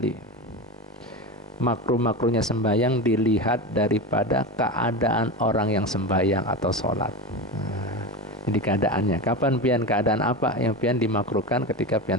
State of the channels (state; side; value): normal; both; correlation 0.23